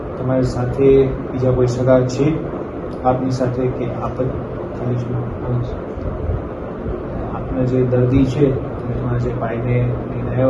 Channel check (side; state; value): both; identical; correlation 1.00